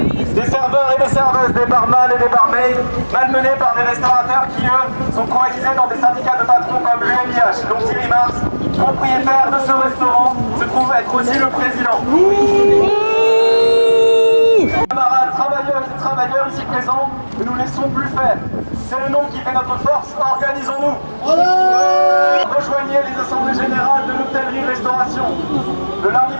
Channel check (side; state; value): both; inverted; correlation -1.00